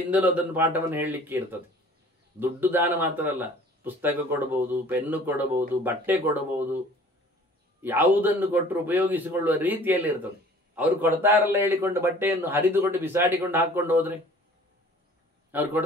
ಅದನ್ನು ಪಾಠವನ್ನು ಹೇಳಲಿಕ್ಕೆ ಇರ್ತದೆ. ದುಡ್ಡು ದಾನ ಮಾತ್ರ ಅಲ್ಲ, ಪುಸ್ತಕ ಕೊಡಬಹುದು, ಪೆನ್ನು ಕೊಡಬಹುದು, ಬಟ್ಟೆ ಕೊಡಬಹುದು, ಯಾವುದನ್ನು ಕೊಟ್ಟರು ಉಪಯೋಗಿಸಿಕೊಳ್ಳುವ ರೀತಿಯಲ್ಲಿ ಇರ್ತದೆ. ಅವರು ಕೊಡ್ತಾರಲ್ಲ ಹೇಳಿಕೊಂಡು ಬಟ್ಟೆಯನ್ನು ಹರಿದುಕೊಂಡು ಬಿಸಾಡಿಕೊಂಡು ಹಾಕ್ಕೊಂಡು ಹೋದ್ರೆ, ಅವ್ರು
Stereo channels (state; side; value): normal; both; correlation 0.50